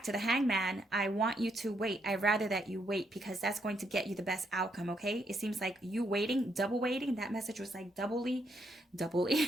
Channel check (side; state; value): both; normal; correlation 0.76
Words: to the Hangman. I want you to wait. I'd rather that you wait, because that's going to get you the best outcome, okay? It seems like you waiting, double waiting. That message was like double